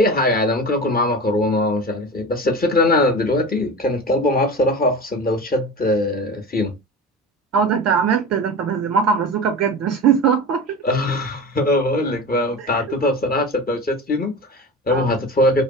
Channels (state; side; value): normal; both; correlation 0.30